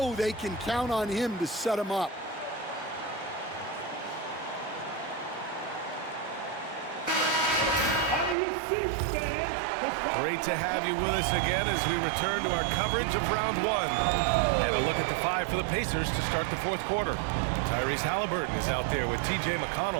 they can count on him to set them up. Great to have you with us again as we return to our coverage of round 1. And a look at the 5 for the Pacers to start the fourth quarter. Tyrese Halliburton is out there with T.J.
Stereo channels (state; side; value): drops out; left; at 8.3 s